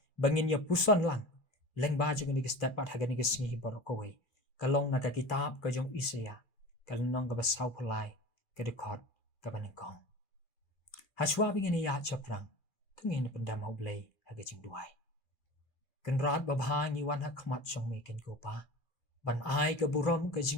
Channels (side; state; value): right; late; 2.5 ms